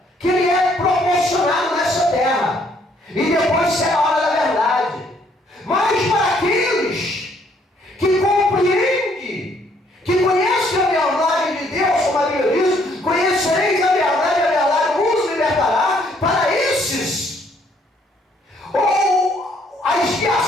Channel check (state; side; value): normal; both; correlation 0.66